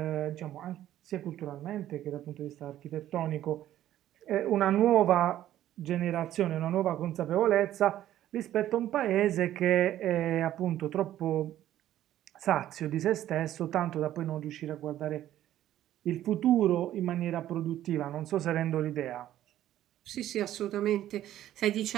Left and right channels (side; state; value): left; quieter; 12.7 dB